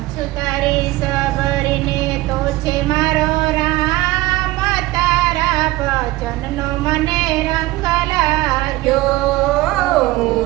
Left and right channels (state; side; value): quieter; left; 18.4 dB